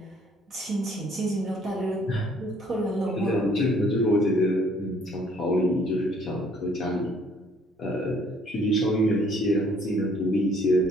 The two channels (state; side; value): normal; both; correlation 0.61